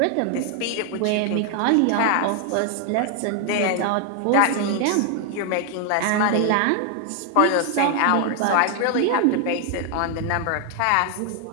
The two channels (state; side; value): different; both; correlation 0.00